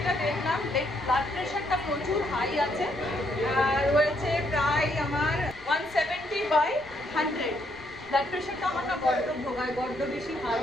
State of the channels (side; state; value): left; noise; rumble, 24 dB below the sound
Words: দেখলাম, ব্লাড প্রেশারটা প্রচুর হাই আছে, রয়েছে প্রায় আমার 170/100। ব্লাড প্রেশারটা আমার না বড্ড ভোগায়, বড্ড বেশি হাই